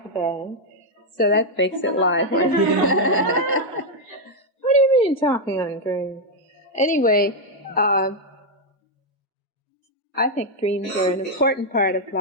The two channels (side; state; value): both; normal; correlation 0.00